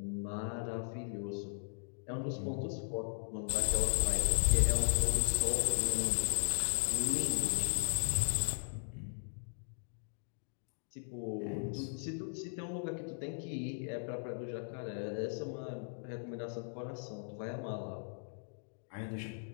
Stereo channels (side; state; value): right; silent; digital silence